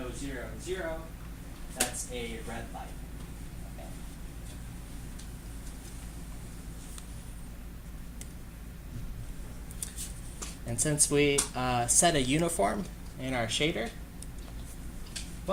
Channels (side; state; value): both; identical; correlation 1.00